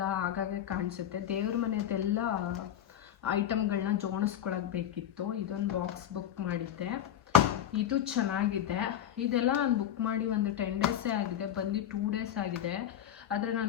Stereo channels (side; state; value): right; quieter; 10.6 dB